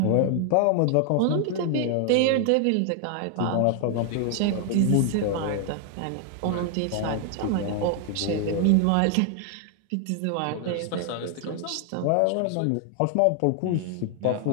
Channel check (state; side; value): different; both; correlation 0.00